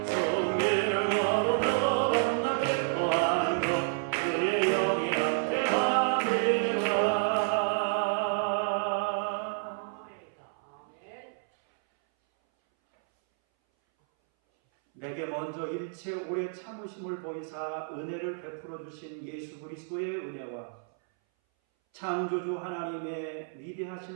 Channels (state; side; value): silent; left; 58 dB below the other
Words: 성기를 걸으며 만나 기뻐하는 것 주의 영이 내게 먼저 일체 오래 참으심을 보이사 은혜를 베풀어 주신 예수 그리스도의 은혜와 창조주 하나님의